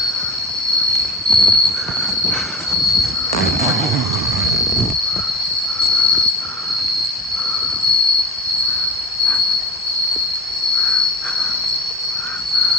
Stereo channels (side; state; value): both; normal; correlation 0.35